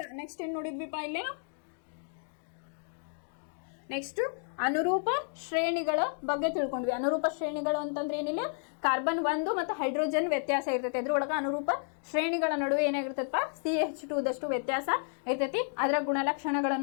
ನೆಕ್ಸ್ಟ್ ಏನ್ ನೋಡಿದ್ವಿಪ್ಪ? ಇಲ್ಲೇ ನೆಕ್ಸ್ಟ್ ಅನುರೂಪ ಶ್ರೇಣಿಗಳ ಬಗ್ಗೆ ತಿಳ್ಕೊಂಡ್ವಿ. ಅನುರೂಪ ಶ್ರೇಣಿಗಳು ಅಂತಂದ್ರೆ ಏನಿಲ್ಲ, ಕಾರ್ಬನ್ 1 ಮತ್ತು ಹೈಡ್ರೋಜನ್ ವ್ಯತ್ಯಾಸ ಇರ್ತೈತಿ. ಅದ್ರೊಳಗೆ ಅನುರೂಪ ಶ್ರೇಣಿಗಳ ನಡುವೆ ಏನಾಗಿರ್ತೈತಪ್ಪ? CH2 ದಷ್ಟು ವ್ಯತ್ಯಾಸ ಇರ್ತೈತಿ. ಅದರ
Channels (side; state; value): right; silent; 57 dB below the other